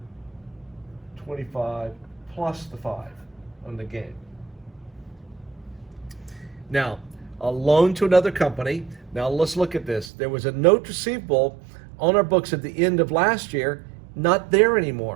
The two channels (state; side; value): drops out; left; at 10.1 s